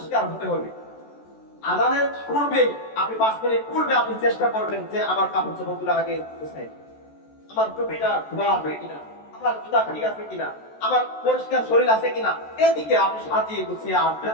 হতে হবে। আজানের পূর্বে আপনি 5 মিনিট পূর্বে আপনি চেষ্টা করবেন যে আমার কাপড় চোপড়গুলো আগে গুছাই, আমার টুপিটা ধোয়া আছে কিনা, আমার জুতা ঠিক আছে কিনা, আমার পরিষ্কার শরীর আছে কিনা, এদিকে আপনি সাজিয়ে গুছিয়ে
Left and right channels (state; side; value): late; right; 14 ms